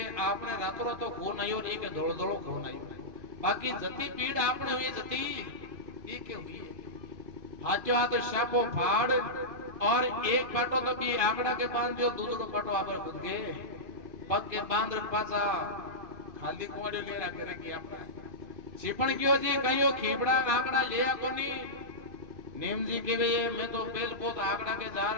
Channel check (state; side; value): late; left; 2.5 ms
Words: आपने रातों रात तो खून आयो नहीं के धोल धोल खून आयो बाकी जती पीड़ आपने हुई जती ये के हुई हाथों हाथ शापो फाड़ और एक पाटो तो भी आंकड़ा के बांध दियो दूसरो पाटो आप खुद गए पग के बांध पासा खाली कोड़ियो ले रहा करेगी अपना छिपण क्यों जी कहियो खीपड़ा आंकड़ा लिया कोनी नेम जी के वे मैं तो बेल पोत आंकड़ा के